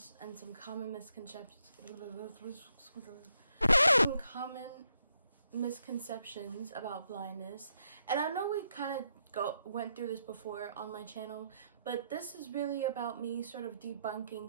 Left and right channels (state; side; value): inverted; both; correlation -0.78